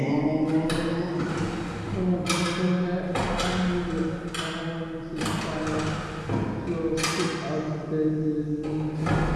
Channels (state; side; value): identical; both; correlation 1.00